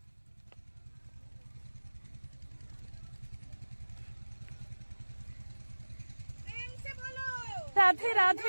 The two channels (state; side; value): inverted; both; correlation -1.00